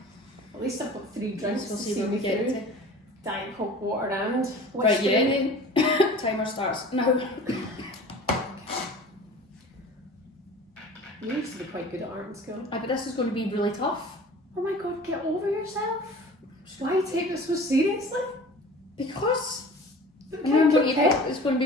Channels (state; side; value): normal; both; correlation 0.42